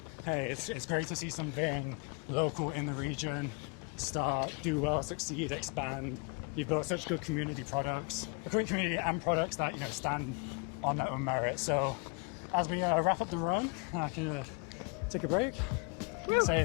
Hey, it's great to see something local in the region start, do well, succeed, expand. You've built such good community products, a great community and products that, you know, stand on their own merit. So as we wrap up the run, I can take a break.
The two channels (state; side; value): quieter; right; 32.2 dB